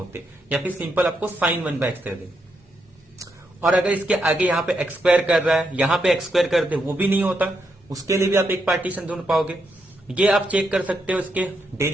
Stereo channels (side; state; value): both; normal; correlation 0.81